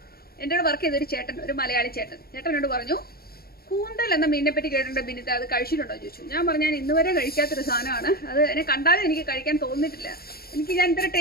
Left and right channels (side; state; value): right; late; 0.44 ms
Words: എൻ്റെ വർക്ക് ചെയ്തൊരു ചേട്ടൻ, ഒരു മലയാളി ചേട്ടനോട് പറഞ്ഞു, കൂന്തൽ എന്ന മീനിനെ പറ്റി കേട്ടിട്ടുണ്ട് ബിനിത, അത് കഴിച്ചിട്ടുണ്ടോ ചോദിച്ചു. ഞാൻ പറഞ്ഞു, ഞാൻ ഇന്നുവരെ കഴിക്കാത്തൊരു സാധനമാണ്, അത് എന്നെ കണ്ടാലും എനിക്ക് കഴിക്കാൻ തോന്നിയിട്ടില്ല, ഞാൻ ഇത്ര